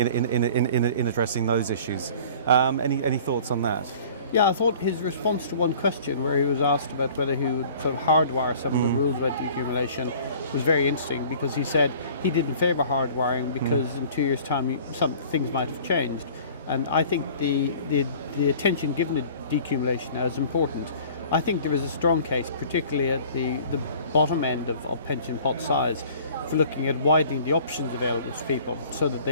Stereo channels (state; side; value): inverted; both; correlation -0.48